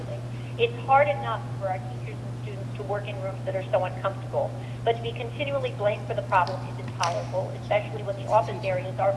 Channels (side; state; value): both; identical; correlation 1.00